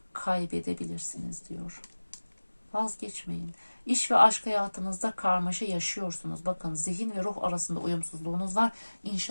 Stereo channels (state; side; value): inverted; both; correlation -1.00